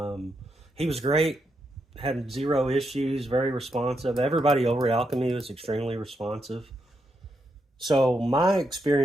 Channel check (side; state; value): both; normal; correlation 0.82